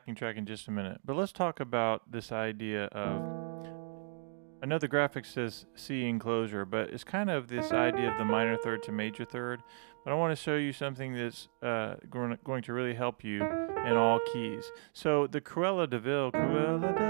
track in just a minute, but let's talk about this idea of, I know the graphic says C enclosure, but it's kind of this idea of the minor third to major third, but I want to show you something that's going to really help you in all keys. So the Cruella de Vil,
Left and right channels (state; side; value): silent; left; 55 dB below the other